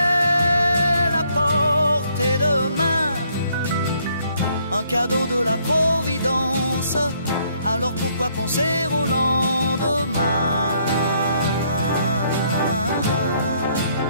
à portée de main, un cadeau de la Providence. Alors pourquoi penser au lendemain?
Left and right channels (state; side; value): inverted; both; correlation -0.68